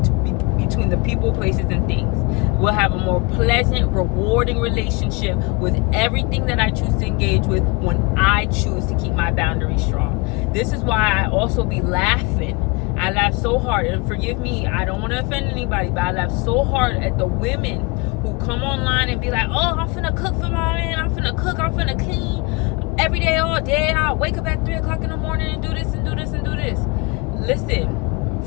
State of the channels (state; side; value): quieter; right; 27.6 dB